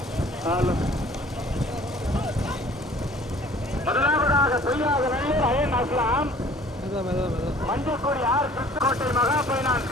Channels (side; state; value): both; normal; correlation 0.51